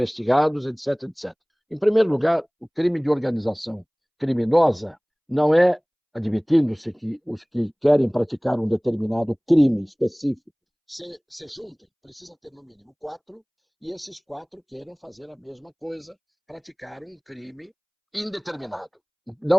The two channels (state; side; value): identical; both; correlation 1.00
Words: etc, etc. Em primeiro lugar, o crime de organização criminosa não é, admitindo-se que os que querem praticar um determinado crime específico se juntem, precisa ter no mínimo 4, e esses 4 queiram fazer a mesma coisa, praticar um crime indeterminado,